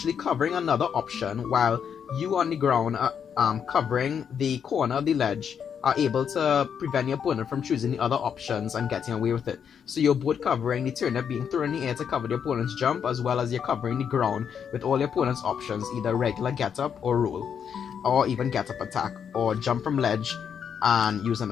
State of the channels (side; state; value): right; quieter; 7.6 dB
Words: covering another option while you on the ground covering the corner of the ledge are able to prevent the opponent from choosing the other options and getting away with it. So you're both covering the turnip being thrown in the air to cover the opponent's jump, as well as you're covering the ground with all the opponent's options, either regular get up or roll, or even get up attack, or jump from ledge and use an